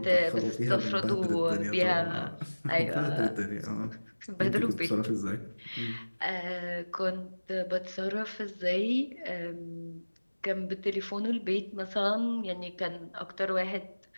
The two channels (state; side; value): inverted; both; correlation -1.00